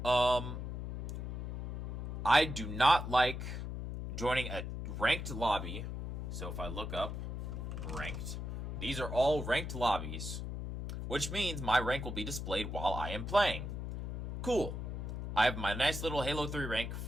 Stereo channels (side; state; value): left; noise; hum, 5 dB below the sound